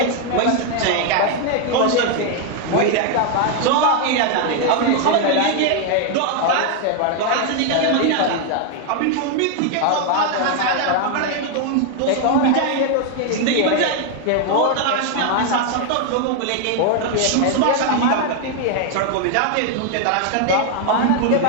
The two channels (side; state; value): both; different; correlation 0.00